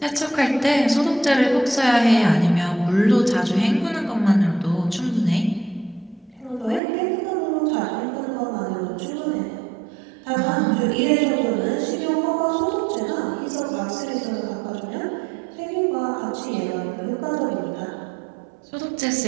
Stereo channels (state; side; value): drops out; left; at 6.8 s